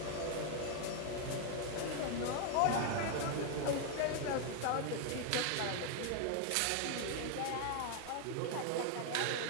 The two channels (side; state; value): both; different; correlation 0.00